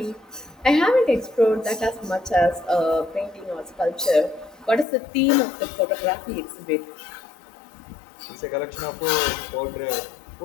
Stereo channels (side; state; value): right; drops out; at 4.9 s